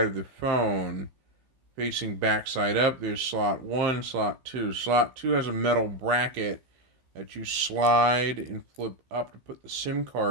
of the phone, facing backside up. There's slot 1, slot 2. Slot 2 has a metal bracket that you slide and flip up to put the SIM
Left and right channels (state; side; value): late; left; 15 ms